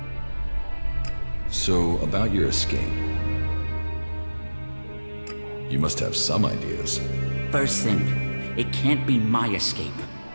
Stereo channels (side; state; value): both; inverted; correlation -1.00